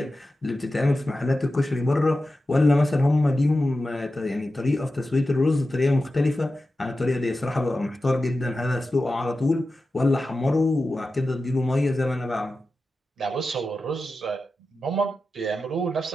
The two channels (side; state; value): both; normal; correlation 0.93